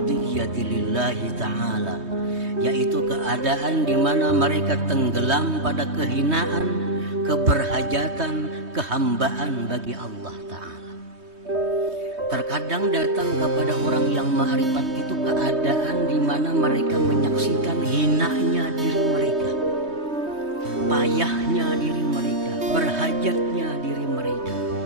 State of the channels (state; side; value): late; left; 3.2 ms